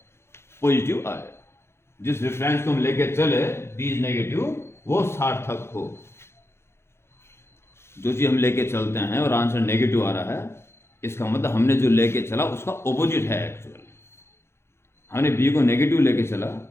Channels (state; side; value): late; right; 0.12 ms